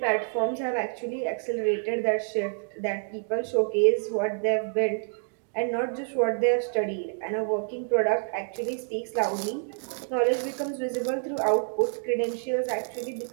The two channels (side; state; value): left; silent; digital silence